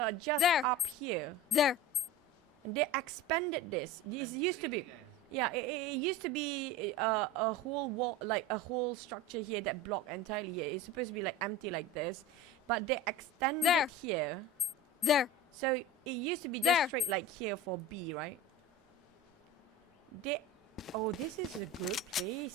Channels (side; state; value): both; normal; correlation 0.32